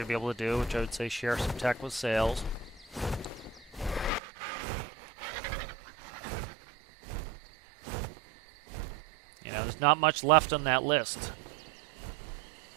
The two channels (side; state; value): left; drops out; at 4.2 s